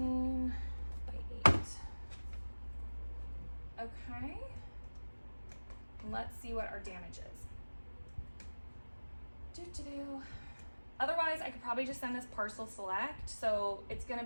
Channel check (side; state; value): both; inverted; correlation -1.00